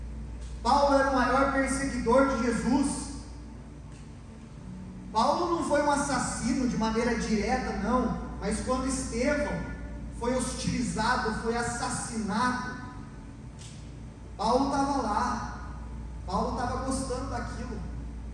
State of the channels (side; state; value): both; identical; correlation 1.00